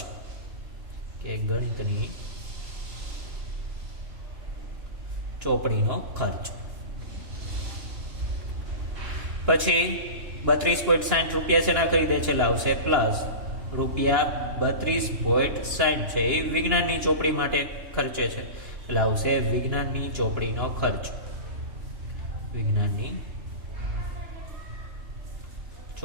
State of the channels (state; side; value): late; left; 2.9 ms